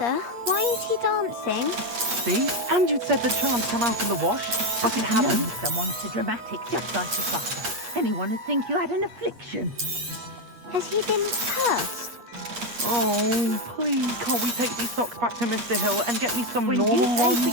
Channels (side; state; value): left; late; 8.4 ms